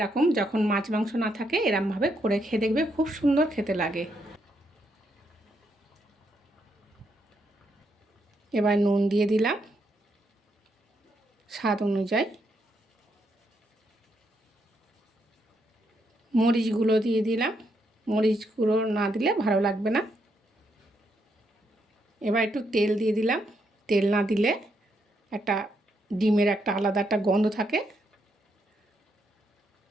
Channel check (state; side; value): normal; both; correlation 0.78